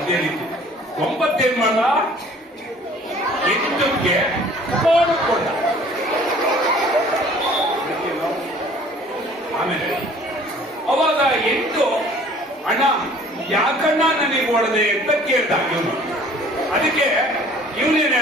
ರೀತಿ 9 ಏನ್ ಮಾಡ 8ಕ್ಕೆ ಕೊಂಡ ಆಮೇಲೆ ಅವಾಗ 8 ಅಣ್ಣ ಯಾಕಣ್ಣ ನನಗೆ ಹೊಡೆದೆ ಅಂತ ಕೇಳ್ದ ಇವನು. ಅದಕ್ಕೆ ಇವನೇನ್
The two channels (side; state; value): both; normal; correlation 0.52